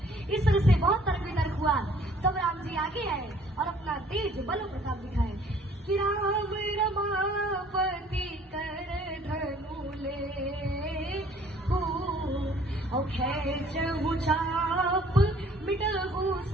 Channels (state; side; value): normal; both; correlation 0.57